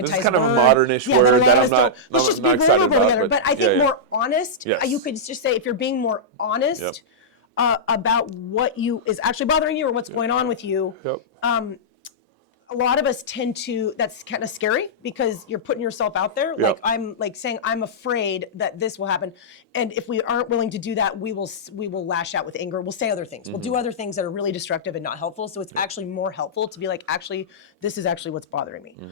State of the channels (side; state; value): both; normal; correlation -0.11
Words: kind word. Of a modern-ish that a lot of us don't. Let's just be vulnerable together. But I think more honest. You could just say if you're being more honest about what is actually bothering you or what's going on with you. A lot of us tend to. That's kind of scary because you're putting yourself out there. Like I'm like saying I'm afraid that this will happen, and if we aren't willing to do that, we will lash out with anger. We'll say other things. We'll do other things that are really destructive and not helpful. So it's actually more helpful to be like, actually, this is actually what's bothering me.